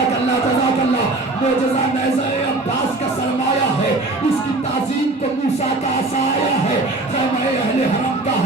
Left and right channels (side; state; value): left; quieter; 3.0 dB